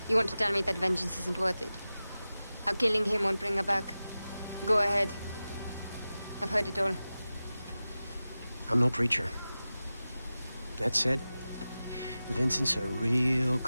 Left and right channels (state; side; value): inverted; both; correlation -0.95